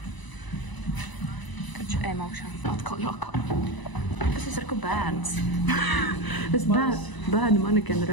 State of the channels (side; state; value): right; late; 1.0 ms